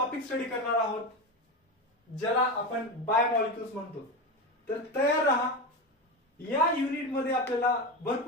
स्टडी करणार आहोत, ज्याला आपण बायोमॉलिक्युल्स म्हणतो. तर तयार राहा. या युनिट मध्ये आपल्याला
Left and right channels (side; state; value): both; normal; correlation 0.20